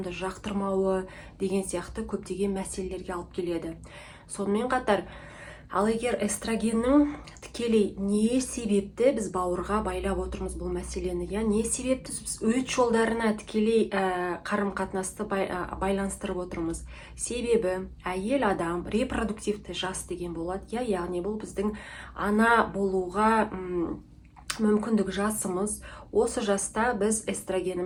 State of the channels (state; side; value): identical; both; correlation 1.00